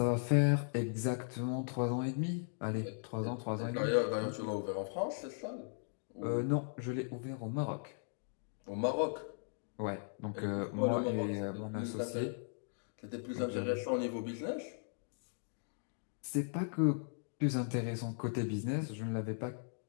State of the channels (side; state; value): right; silent; digital silence